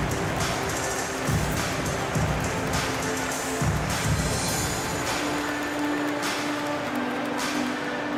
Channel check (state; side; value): identical; both; correlation 1.00